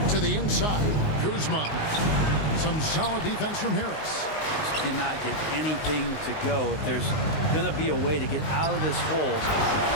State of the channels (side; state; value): right; late; 19 ms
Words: To the inside, Kuzma. Some solid defense from Harris. Just cannot get anything to go. If there's going to be a way to get out of this hole,